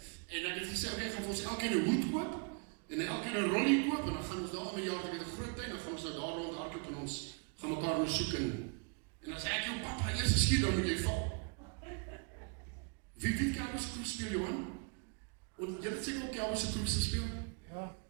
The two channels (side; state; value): left; quieter; 35.7 dB